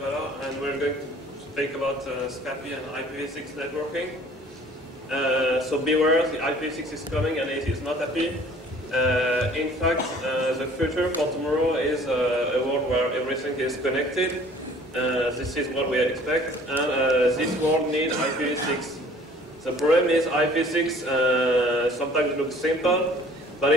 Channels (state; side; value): normal; both; correlation 0.52